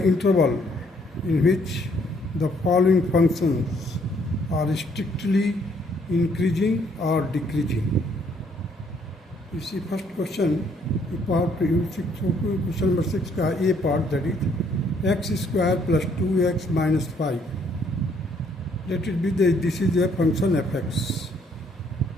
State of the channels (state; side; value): normal; both; correlation 0.66